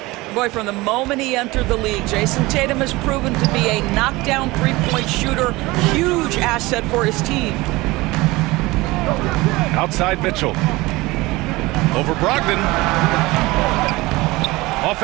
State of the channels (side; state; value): left; quieter; 21.1 dB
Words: Boy, from the moment he entered the league, Jason Tatum has proven to be a knockdown three-point shooter. Huge asset for his team. Outside Mitchell. Over Brogdon.